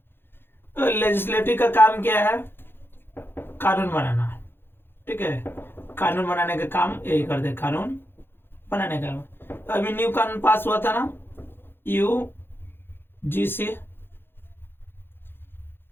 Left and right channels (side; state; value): right; late; 0.10 ms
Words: तो लेजिस्लेटिव का काम क्या है? कानून बनाना। ठीक है, कानून बनाने का काम यही करते, कानून बनाने का। तो अभी न्यू कानून पास हुआ था ना, यूजीसी,